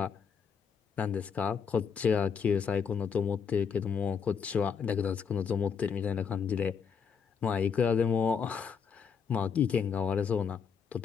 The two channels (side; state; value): right; quieter; 6.6 dB